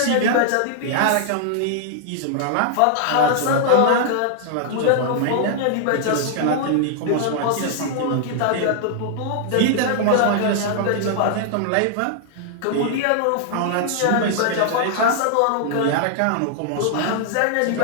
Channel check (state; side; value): different; both; correlation -0.01